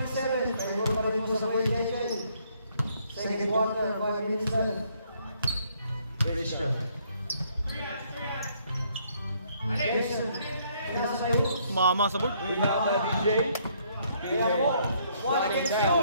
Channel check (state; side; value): inverted; both; correlation -0.68